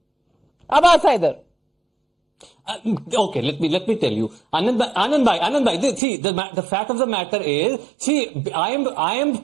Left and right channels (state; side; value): drops out; left; at 6.0 s